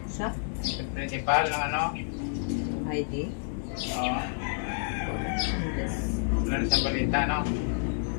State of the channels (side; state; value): right; silent; digital silence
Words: Sa? Yung principal ng ano? Heidi? Oo. Hindi. Wala na siyang balita, no?